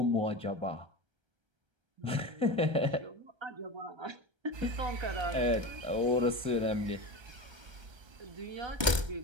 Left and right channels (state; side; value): late; left; 1.3 ms